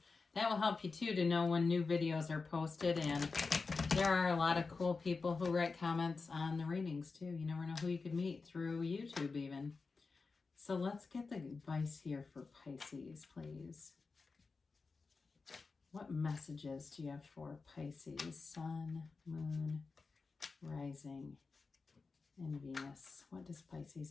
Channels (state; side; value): quieter; right; 4.3 dB